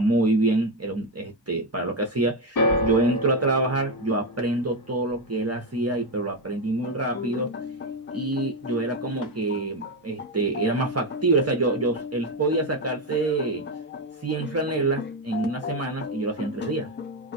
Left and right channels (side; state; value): both; normal; correlation 0.09